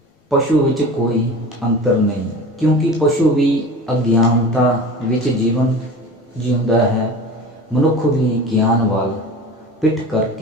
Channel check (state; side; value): normal; both; correlation 0.35